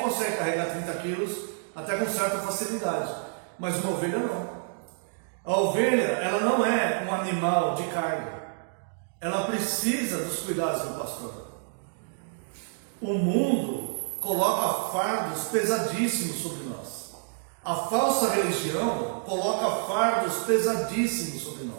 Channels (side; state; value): left; silent; digital silence